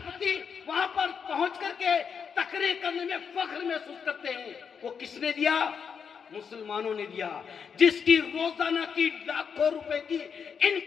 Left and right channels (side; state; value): right; quieter; 6.6 dB